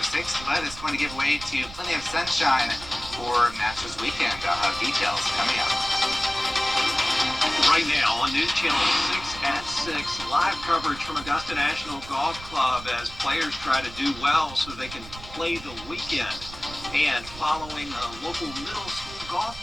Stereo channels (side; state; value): right; noise; rumble, 15 dB below the sound